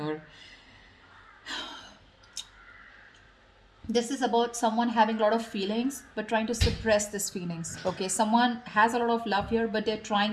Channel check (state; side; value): identical; both; correlation 1.00